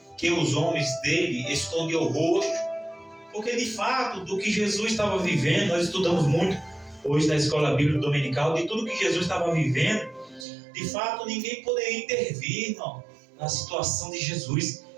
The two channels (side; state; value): left; drops out; at 10.5 s